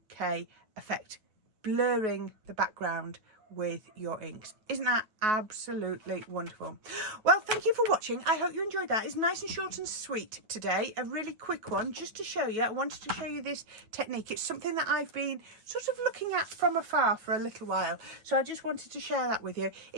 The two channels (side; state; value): left; late; 9.3 ms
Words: effect, blurring the background with your inks. Isn't that absolutely wonderful? Well, thank you for watching. I hope you enjoyed that. It's nice and short and sweet today. A really quick one just to show you. I wanted to show you this technique. It's something that I've been sort of looking at from afar for a little while. So I just wanted to share that with you.